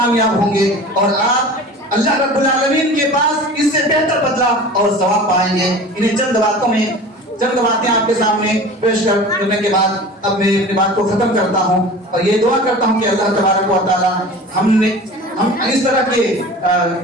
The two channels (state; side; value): normal; both; correlation 0.38